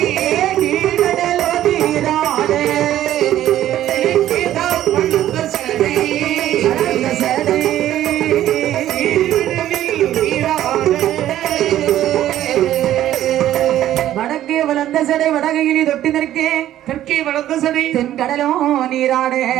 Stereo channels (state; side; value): quieter; left; 12.7 dB